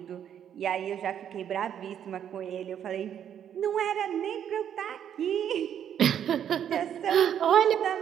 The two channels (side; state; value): left; quieter; 9.3 dB